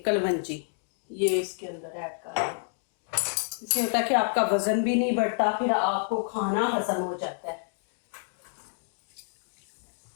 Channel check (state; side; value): silent; right; 59 dB below the other